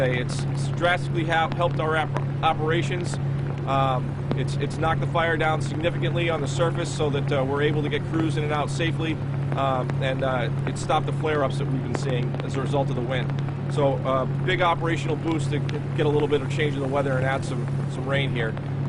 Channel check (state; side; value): identical; both; correlation 1.00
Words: It's drastically helped our operations. It's knocked the fire down significantly on the surface so that we're able to get crews in and out safely, and it stopped the flare-ups that we've been seeing as a result of the wind. So big operational boost to get a little bit of change in the weather and add some rain here.